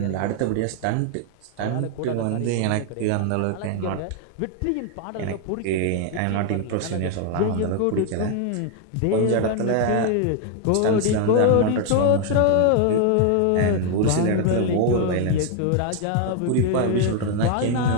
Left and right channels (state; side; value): different; both; correlation 0.00